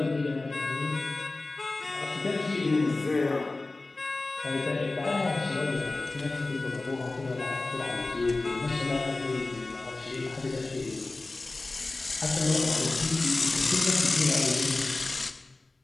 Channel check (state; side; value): quieter; right; 3.2 dB